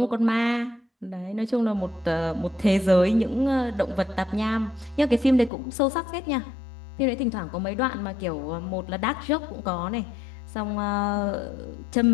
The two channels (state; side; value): drops out; right; at 5.5 s